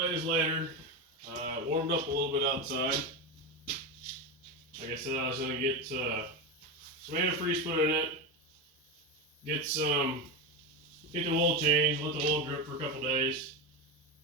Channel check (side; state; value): both; normal; correlation 0.15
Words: later. It warmed up a little bit outside. Like I said, I was going to get some antifreeze put in it, get the oil changed, let the oil drip for a couple days.